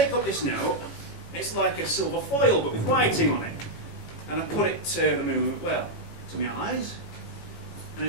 up this note, it's like a silver foil but with writing on it, and I put it to the moon, well, to my eyes, and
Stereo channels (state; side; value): late; right; 18 ms